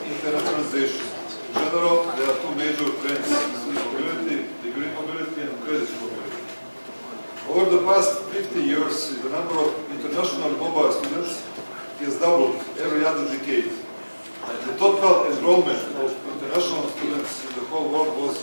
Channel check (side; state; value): both; inverted; correlation -1.00